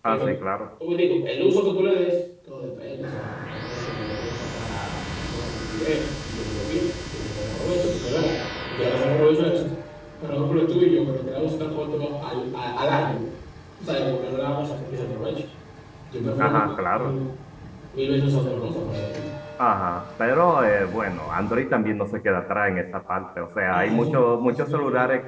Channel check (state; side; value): identical; both; correlation 1.00